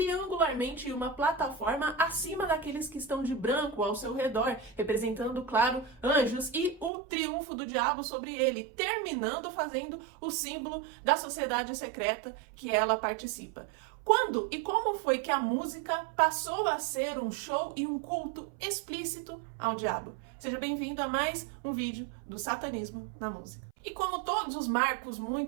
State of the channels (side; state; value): left; drops out; at 6.9 s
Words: em uma plataforma acima daqueles que estão de branco ao seu redor, representando, claro, anjos e o triunfo do diabo sobre ele, terminando fazendo o símbolo da sociedade secreta que ela participa. Quando e como foi que a música passou a ser um show e um culto explícito ao diabo? Seja bem-vindo a mais um vídeo do satanismo na música. E como todos os marcos